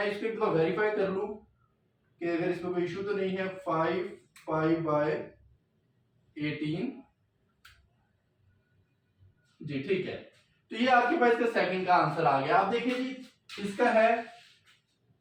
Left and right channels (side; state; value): both; identical; correlation 1.00